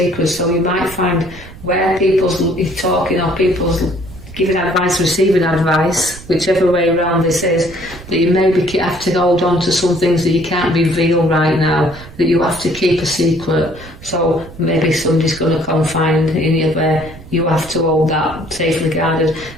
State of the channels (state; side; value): noise; right; rumble, 17 dB below the sound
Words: So you might find where people's talking or people's giving advice, receiving advice, whichever way around this is, that you maybe have to hold on to some things that you can't reveal right now, that you have to keep a secret. So maybe somebody's going to confide in you where you have to hold that safely guarded.